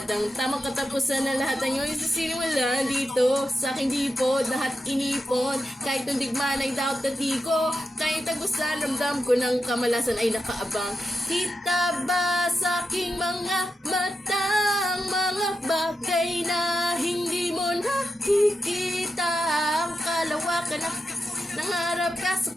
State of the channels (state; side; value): normal; both; correlation 0.88